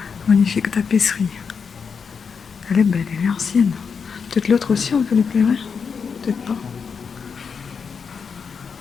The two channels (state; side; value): quieter; right; 6.0 dB